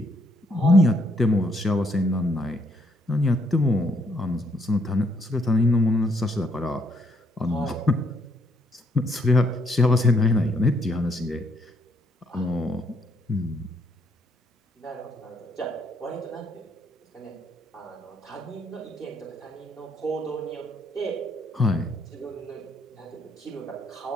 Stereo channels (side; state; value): both; normal; correlation 0.71